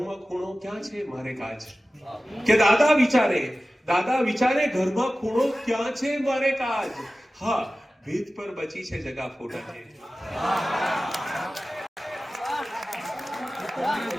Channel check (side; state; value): both; normal; correlation 0.95